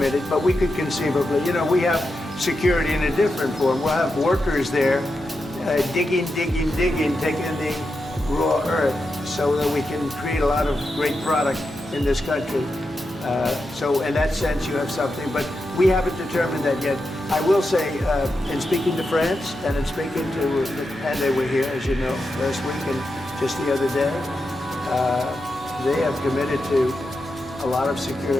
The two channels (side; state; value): both; normal; correlation 0.88